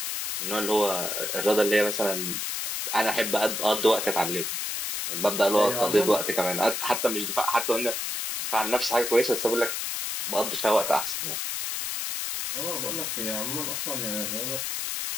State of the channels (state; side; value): noise; left; hiss, 3 dB below the sound